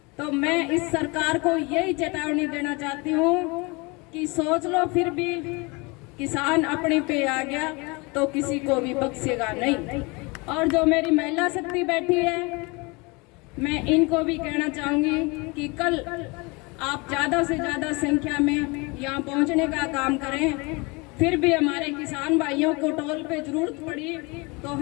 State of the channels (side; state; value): right; quieter; 27.4 dB